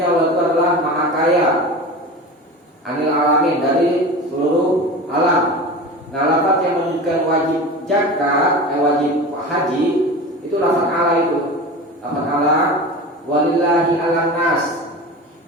Allah itu adalah maha kaya, 'anil 'alamin, dari seluruh alam. Nah, lafaz yang menunjukkan wajib zakat, wajib haji, itu lafaz ala itu. Lafaz ala, walillahi 'alan nas.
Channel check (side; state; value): both; normal; correlation 0.31